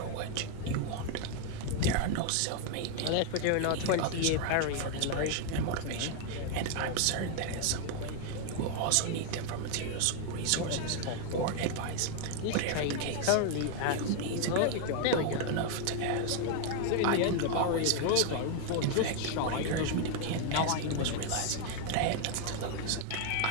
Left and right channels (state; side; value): different; both; correlation 0.00